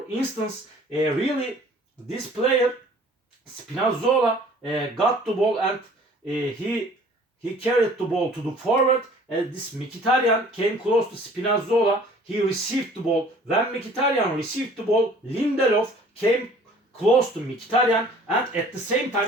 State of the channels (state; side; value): normal; both; correlation 0.52